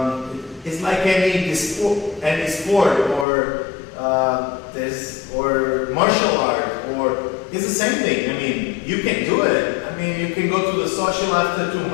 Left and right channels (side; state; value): right; drops out; at 3.2 s